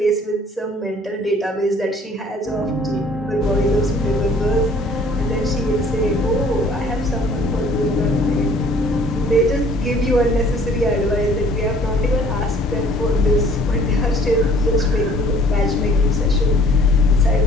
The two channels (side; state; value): both; normal; correlation 0.55